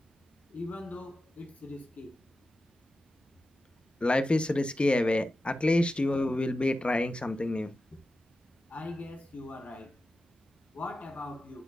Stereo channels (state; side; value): normal; both; correlation 0.92